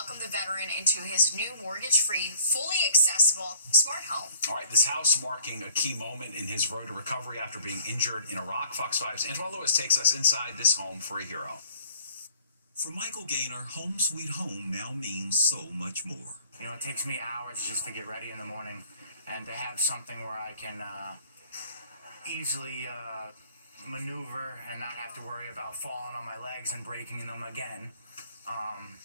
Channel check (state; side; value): inverted; both; correlation -0.54